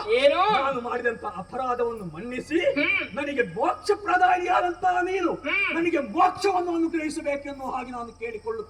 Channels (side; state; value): both; identical; correlation 1.00